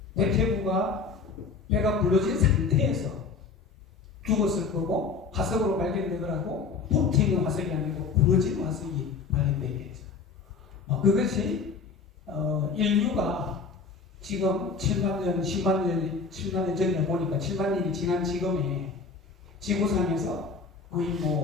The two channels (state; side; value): quieter; right; 4.9 dB